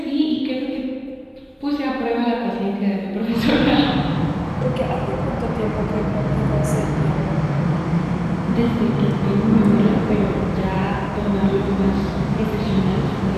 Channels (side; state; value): both; identical; correlation 1.00